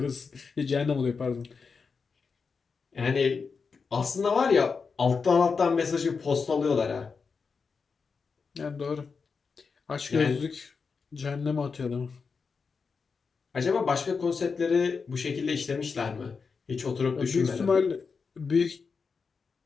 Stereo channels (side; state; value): right; quieter; 5.2 dB